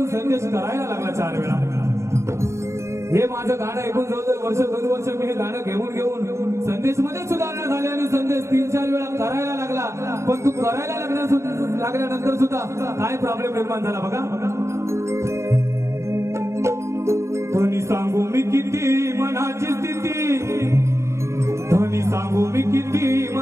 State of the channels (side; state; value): left; late; 0.14 ms